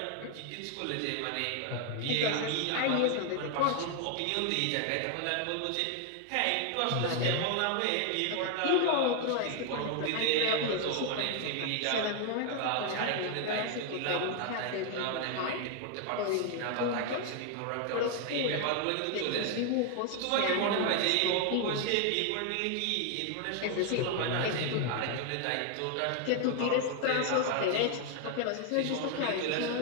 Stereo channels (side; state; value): both; different; correlation 0.00